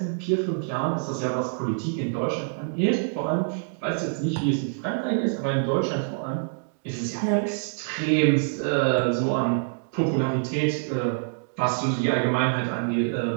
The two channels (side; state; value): left; silent; 61 dB below the other